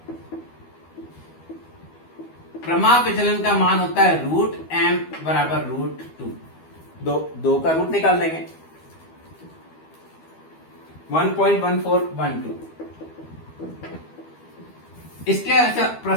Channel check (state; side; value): late; right; 12 ms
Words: प्रमाप विचलन का मान होता है √m बराबर √2। 2 का रूट निकाल देंगे, 1.1412। इसके